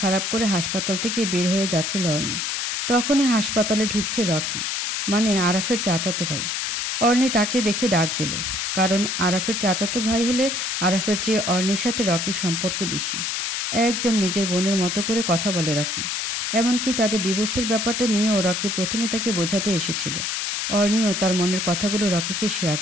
করে হাসপাতাল থেকে বের হয়ে যাচ্ছিল অর্ণি। তখনই হাসপাতালে ঢুকছে রকি, মানে আরাফের চাচাতো ভাই। অর্ণি তাকে দেখে ডাক দিল। কারণ আরাফের চাচাতো ভাই হলে আরাফের চেয়ে অর্ণির সাথে রকির সম্পর্ক বেশি। একদম নিজের বোনের মতো করে কথা বলে রকি। এমনকি তাদের ডিভোর্সের ব্যাপারটা নিয়েও রকি প্রথমে তাকে বোঝাতে এসেছিল। অর্ণিও তার মনের কথাগুলো রকিকে শেয়ার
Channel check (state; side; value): noise; left; hiss, 1 dB below the sound